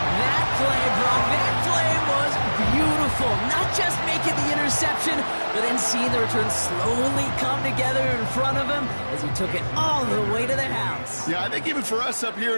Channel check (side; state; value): both; inverted; correlation -1.00